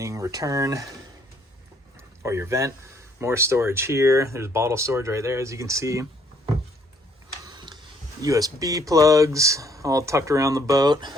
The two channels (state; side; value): normal; both; correlation 0.65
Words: return or your vent. More storage here. There's bottle storage right there, as you can see. USB plugs all tucked around the boat.